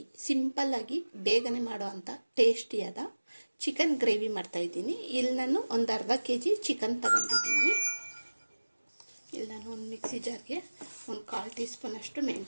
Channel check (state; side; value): inverted; both; correlation -1.00